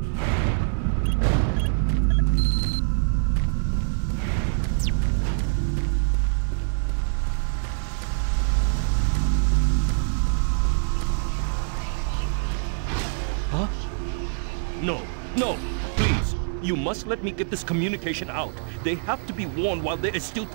Huh? No, no, please. You must let me get this communication out. They have to be warned while there is still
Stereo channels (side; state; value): left; silent; 62 dB below the other